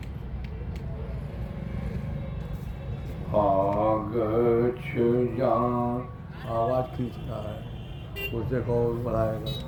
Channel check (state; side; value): identical; both; correlation 1.00